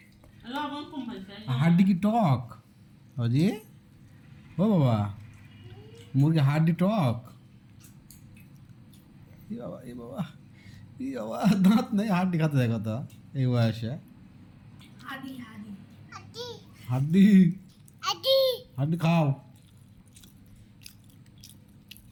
হাড্ডি কি টক? অজি ও বাবা, মুরগি হাড্ডি টক? ই বাবা, ই বাবা, ই বাবা, দাঁত নেই হাড্ডি খাতে যায় কত এই বয়সে? হাডি হাডি হাড্ডি হাড্ডি খাও।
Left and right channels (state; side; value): identical; both; correlation 1.00